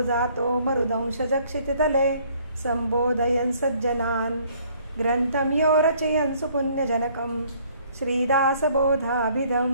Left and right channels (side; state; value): both; inverted; correlation -0.61